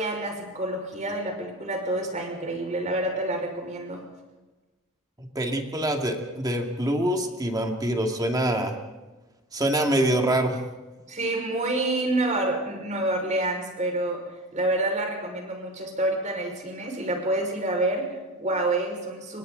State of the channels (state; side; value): normal; both; correlation 0.36